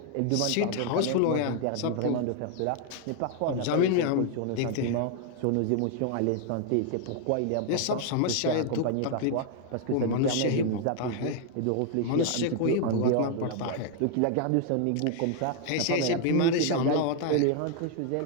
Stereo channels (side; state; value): both; different; correlation 0.00